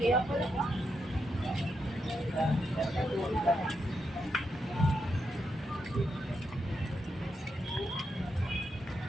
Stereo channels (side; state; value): both; normal; correlation 0.83